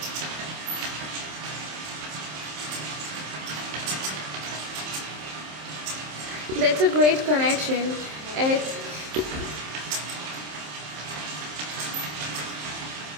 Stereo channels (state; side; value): late; left; 27 ms